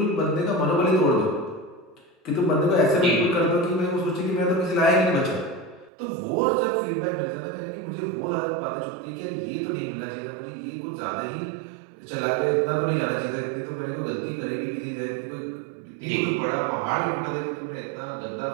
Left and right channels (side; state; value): left; drops out; at 5.9 s